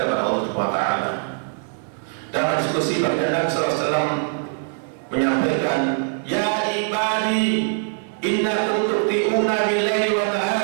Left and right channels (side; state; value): left; silent; 63 dB below the other